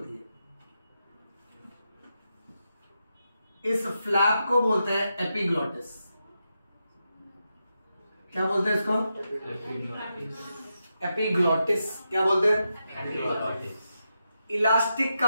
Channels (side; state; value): both; inverted; correlation -0.87